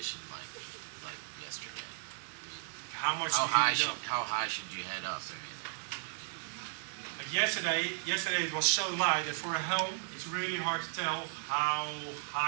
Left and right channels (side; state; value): left; silent; digital silence